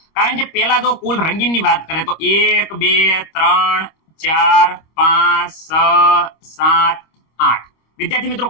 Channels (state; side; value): late; right; 25 ms